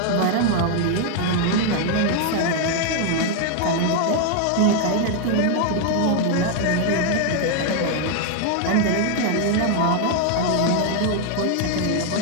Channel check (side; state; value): both; different; correlation 0.00